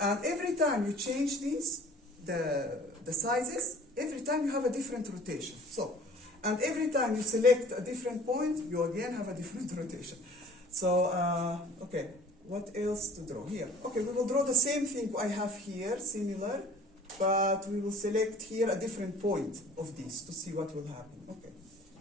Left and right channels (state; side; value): normal; both; correlation 0.49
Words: And every time you change these, the sizes, every time you have a different rotation. So, and every time you select a different point, you again have a different rotation. So, okay, what else to draw here? Okay, we will draw the same thing I have here, similar, but we will select here a different point of this to see what will happen. Okay,